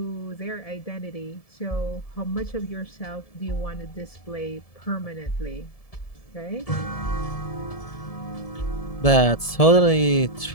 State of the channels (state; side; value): late; right; 1.7 ms